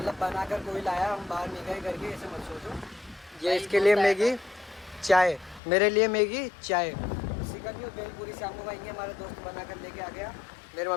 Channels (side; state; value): right; drops out; at 5.6 s